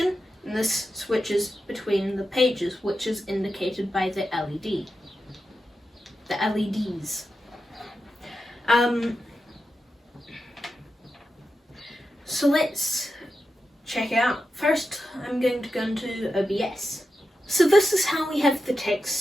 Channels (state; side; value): normal; both; correlation 0.89